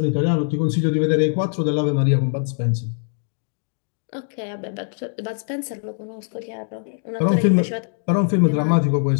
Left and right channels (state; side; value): silent; right; 59 dB below the other